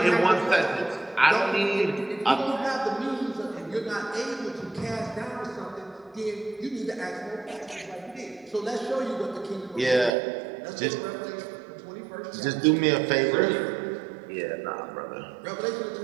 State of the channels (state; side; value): drops out; left; at 10.1 s